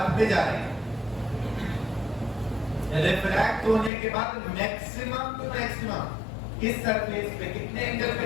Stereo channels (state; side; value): drops out; right; at 3.9 s